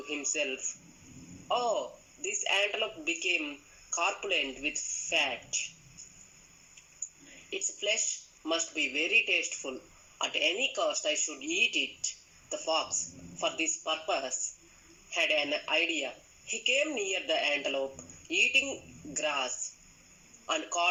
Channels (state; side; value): identical; both; correlation 1.00